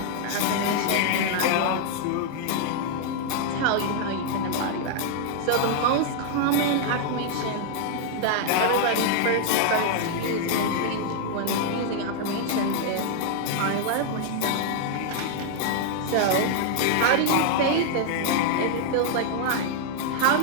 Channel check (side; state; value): both; different; correlation 0.00